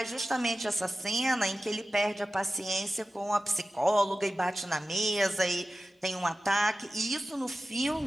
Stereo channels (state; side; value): normal; both; correlation 0.95